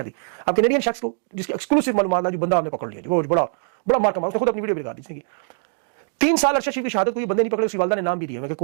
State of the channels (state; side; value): silent; left; 64 dB below the other